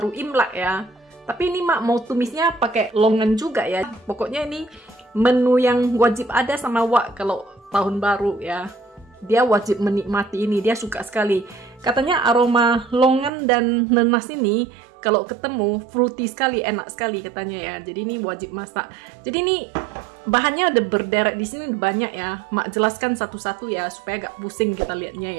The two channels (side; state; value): left; drops out; at 13.3 s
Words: Imlek ya. Tapi ini Mak mau tumisnya pakai longan juga ya. Pokoknya ini menu yang wajib ada sama Wak kalau tahun baru ya. Dia wajib menikmati ini, dia suka sekali. Katanya aroma longan dan nanas ini kalau ketemu fruity sekali, enak sekali katanya ya. Jadi ini wajib masak. Jadi ini bahannya ada berderet di sini banyak ya. Mak jelaskan satu-satu ya supaya gak pusing kita lihatnya